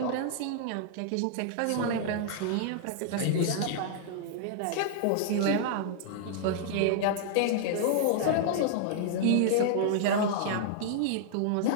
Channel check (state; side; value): different; both; correlation -0.01